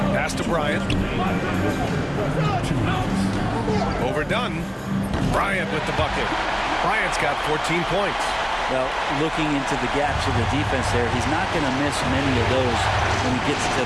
Pass to Bryant. Overdone. Bryant with the bucket. Bryant's got 14 points. Well, looking into the gaps of the defense there, he's not going to miss many of those when he gets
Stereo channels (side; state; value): both; identical; correlation 1.00